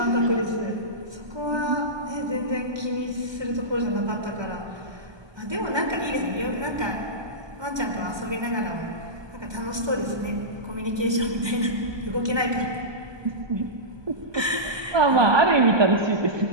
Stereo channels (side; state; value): left; late; 1.2 ms